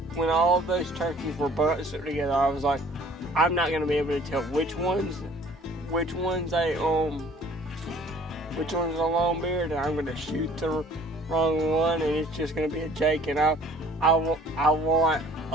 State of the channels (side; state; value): both; normal; correlation 0.54